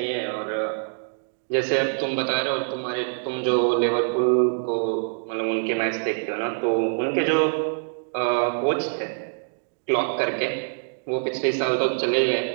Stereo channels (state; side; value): silent; left; digital silence